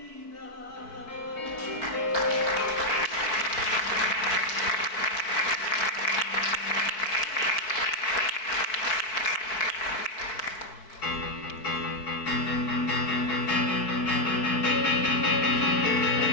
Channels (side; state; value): right; late; 4.6 ms